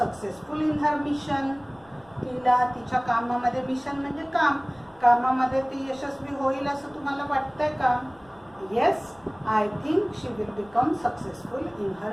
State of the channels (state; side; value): noise; left; rumble, 29 dB below the sound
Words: successful in her mission? तिला तिच्या कामामध्ये, मिशन म्हणजे कामामध्ये ती यशस्वी होईल असं तुम्हाला वाटतंय का? Yes, I think she will become successful in